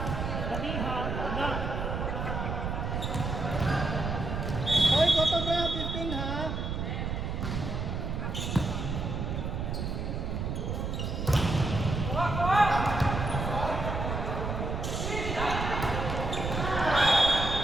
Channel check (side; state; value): right; noise; rumble, 2 dB below the sound